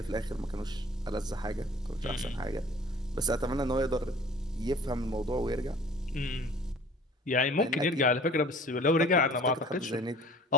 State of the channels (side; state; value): both; normal; correlation 0.47